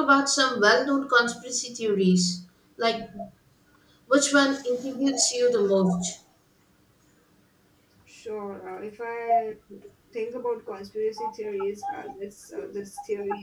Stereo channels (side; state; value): both; identical; correlation 1.00